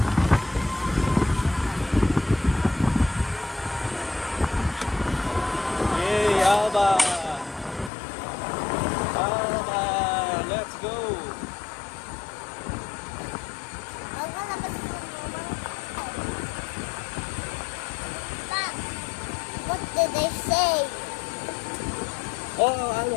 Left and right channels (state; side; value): drops out; right; at 7.9 s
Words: Yay, Aba! Yay! Oh, ano?